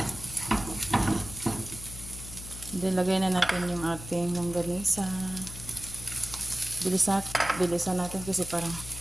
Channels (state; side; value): noise; left; hum, 12 dB below the sound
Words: Dilagay na natin yung ating longganisa. Bilisan natin kasi parang